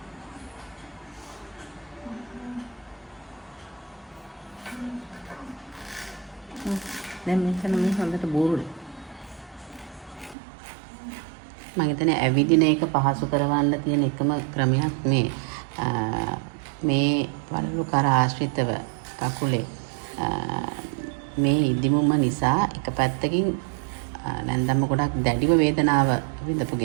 දැන් මෙතන මේ හොඳට බෝරුයි. මම හිතන්නේ ඇවිදින එක පහසු කරවන්න තියෙන එකම ක්‍රමයක් මේ වලලු කර ආශ්‍රිතව කකුලේ මේ ඉදිමුම නිසා එක පැත්තකින් නැන්දම්ම ගොඩක් දැඩිව වේදනාව විඳපු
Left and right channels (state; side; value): drops out; left; at 10.4 s